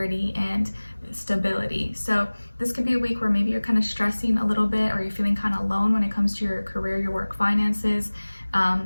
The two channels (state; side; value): inverted; both; correlation -1.00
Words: and stability. So this could be a week where maybe you're kind of stressing a little bit, or you're feeling kind of alone when it comes to your career, your work, finances,